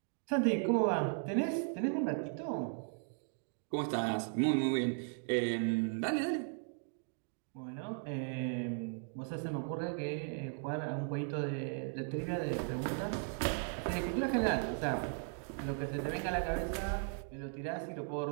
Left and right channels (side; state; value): left; silent; 53 dB below the other